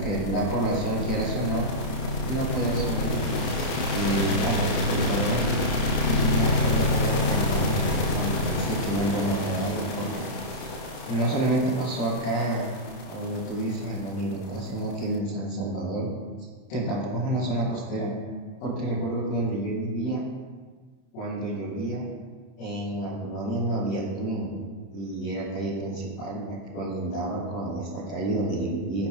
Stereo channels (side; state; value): right; late; 31 ms